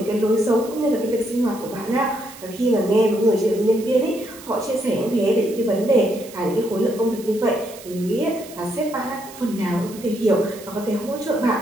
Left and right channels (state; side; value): noise; right; hiss, 18 dB below the sound